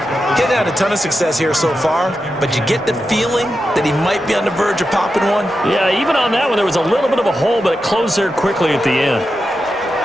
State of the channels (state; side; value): normal; both; correlation 0.89